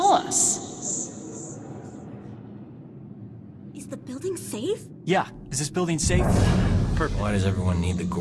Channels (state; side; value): identical; both; correlation 1.00